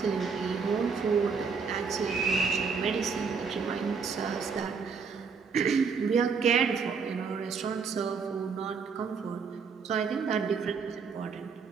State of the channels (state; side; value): quieter; left; 5.6 dB